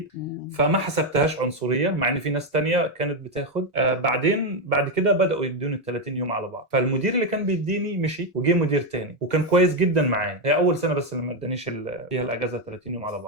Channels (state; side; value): normal; both; correlation 0.06